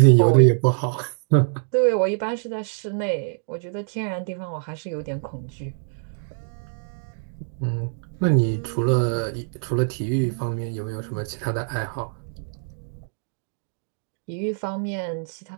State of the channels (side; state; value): left; silent; digital silence